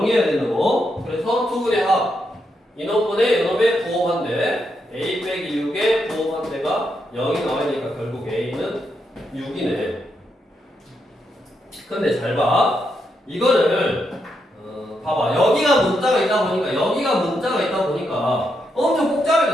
된다고. 그래서 두 분의 합 이놈분의 이놈의 부호반대 a 빼기 6의 부호반대가 0이 나와야 되니까 결국 a는 6이네. 근데 잘 봐. 이거를 봐봐. 여기가 문자가 있다 보니까 엄청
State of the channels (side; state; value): both; normal; correlation 0.81